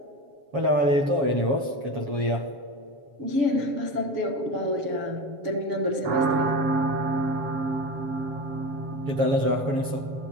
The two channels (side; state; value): left; late; 7.3 ms